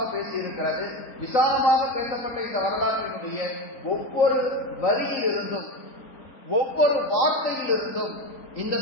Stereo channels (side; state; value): right; late; 3.9 ms